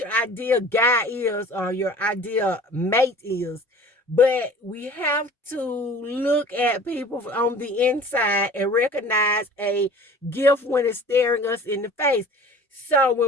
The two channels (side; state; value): both; normal; correlation 0.45